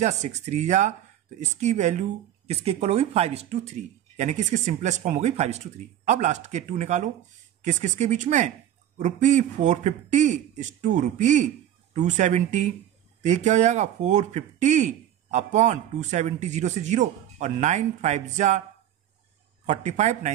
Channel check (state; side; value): quieter; left; 11.4 dB